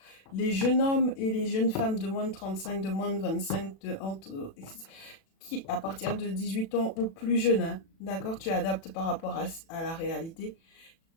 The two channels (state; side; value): late; right; 36 ms